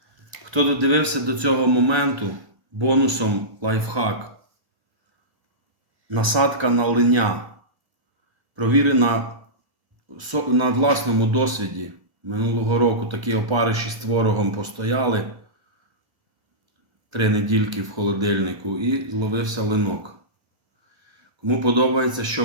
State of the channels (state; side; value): late; left; 1.3 ms